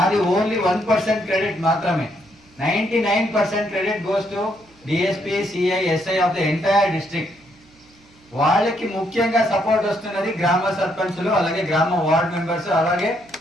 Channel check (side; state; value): right; noise; hum, 29 dB below the sound